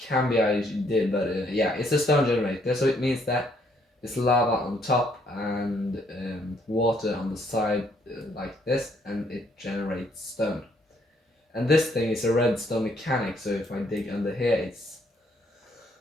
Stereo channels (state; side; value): normal; both; correlation 0.68